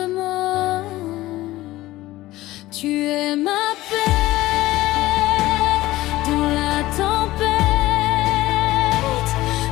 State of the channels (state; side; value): quieter; right; 17.1 dB